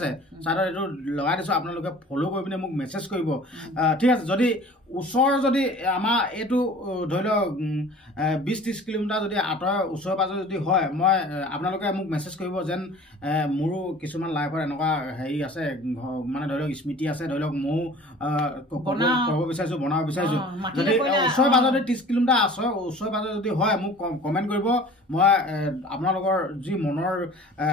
চাইডত এইটো লগাই দিছোঁ আপোনালোকে ফ'ল' কৰি পিনে মোক মেছেজ কৰিব ঠিক আছে যদি ওচৰ যদি আমাৰ এইটো ধৰি লওক 20-30 কিলোমিটাৰ যদি আঁতৰৰ ওচৰে পাজৰে যদি হয় মই আপোনালোকে মোক মেছেজ কৰিব যেন মোৰো কিছুমান লাইফত এনেকুৱা হেৰি আছে মানে ধৰি লওক স্মৃতি আছে ধৰি লওক ময়ো ক'ব বিচাৰিছোঁ বনাব বিচাৰিছোঁ যদি ওচৰে পাজৰে 30 কিলোমিটাৰ আছে ওচৰে পাজৰে যদি হয় মোক কমেণ্ট কৰিব মই আপোনালোকৰ যি মনৰ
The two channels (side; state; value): both; normal; correlation 0.45